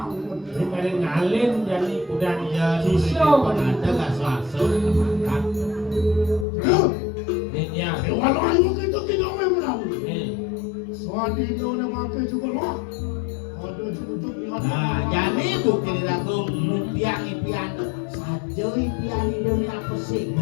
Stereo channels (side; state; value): right; drops out; at 6.5 s